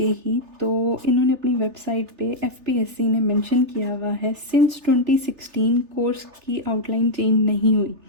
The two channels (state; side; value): late; left; 3.4 ms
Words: ही, तो इन्होंने अपनी वेबसाइट पे FPSC ने मेंशन किया हुआ है सिंस 2016 कोर्स की आउटलाइन चेंज नहीं हुई।